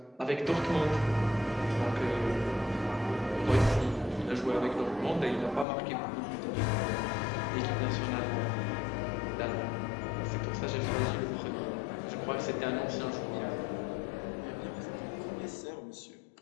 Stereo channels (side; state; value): right; drops out; at 5.7 s